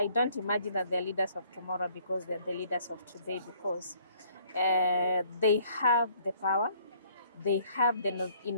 don't imagine that they're leaders of tomorrow because they're the leaders of today, because they have the power, they have the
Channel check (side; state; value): both; inverted; correlation -0.61